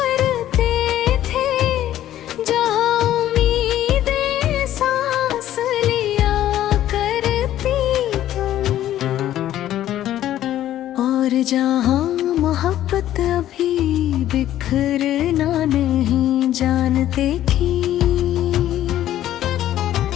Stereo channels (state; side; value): quieter; right; 12.6 dB